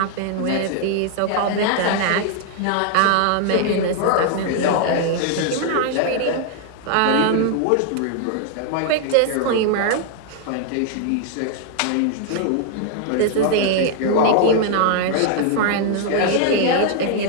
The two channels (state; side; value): different; both; correlation 0.00